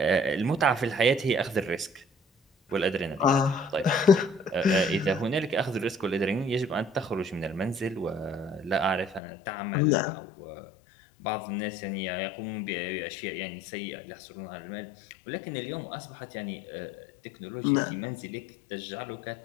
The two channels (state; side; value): drops out; right; at 9.2 s